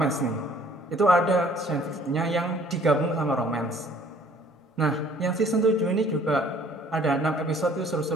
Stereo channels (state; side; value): normal; both; correlation 0.56